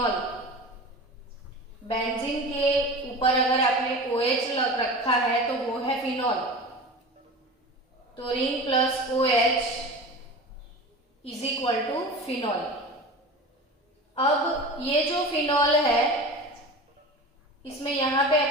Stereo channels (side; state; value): both; normal; correlation 0.33